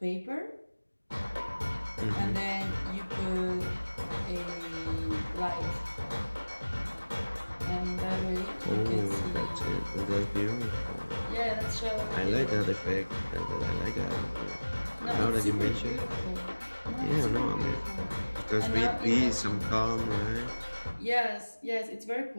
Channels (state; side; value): inverted; both; correlation -1.00